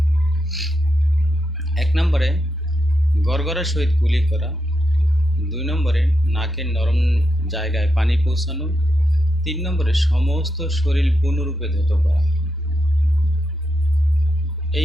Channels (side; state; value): both; normal; correlation 0.85